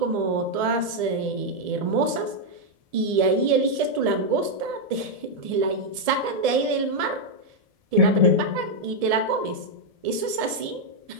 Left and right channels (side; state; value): left; late; 1.7 ms